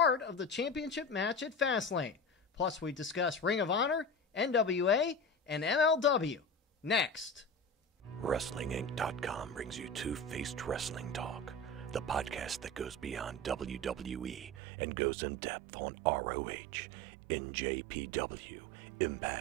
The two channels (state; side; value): drops out; left; at 14.6 s